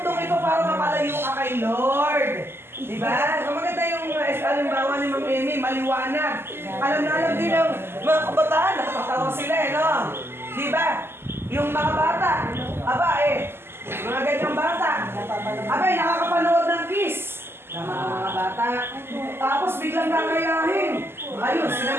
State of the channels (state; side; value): late; left; 0.12 ms